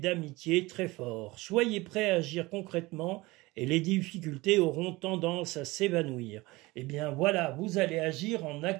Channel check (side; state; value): left; quieter; 21.5 dB